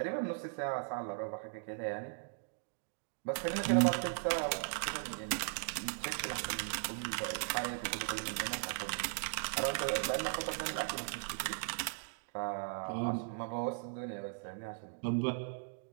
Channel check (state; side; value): silent; left; digital silence